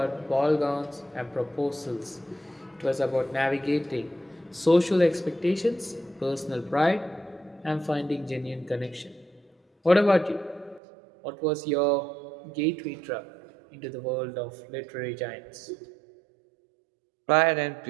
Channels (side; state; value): left; drops out; at 10.8 s